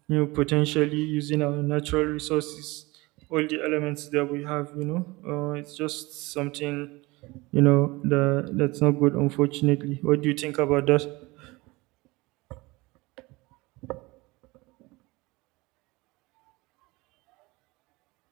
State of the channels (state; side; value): quieter; left; 22.6 dB